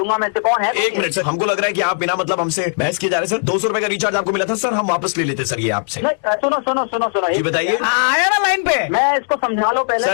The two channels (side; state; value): right; silent; 66 dB below the other